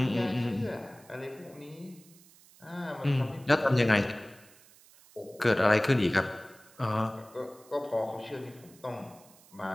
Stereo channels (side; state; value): right; noise; hiss, 25 dB below the sound